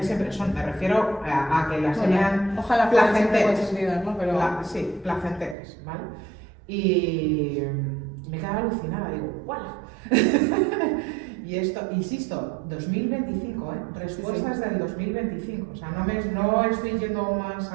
siempre son, me refiero a que las sean placenteras, ¿no? Pero... sí, placenteras, ¿vale? Y me quedaba alucinada, digo, ¡guau! Y esto, insisto, 2025, respuestas del 2025, o sea, no estoy yendo más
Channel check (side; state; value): left; drops out; at 5.6 s